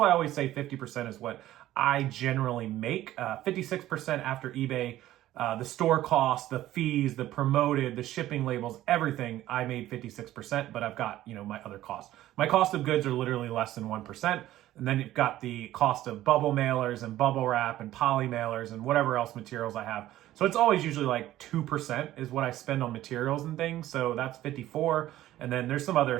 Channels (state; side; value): quieter; left; 14.3 dB